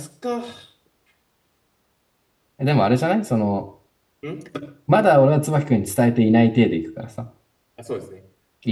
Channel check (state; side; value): identical; both; correlation 1.00